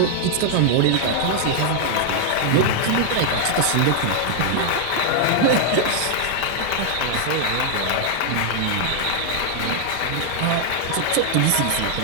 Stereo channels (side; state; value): both; different; correlation 0.00